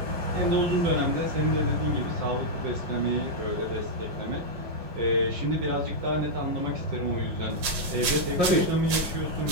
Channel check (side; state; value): left; late; 5.6 ms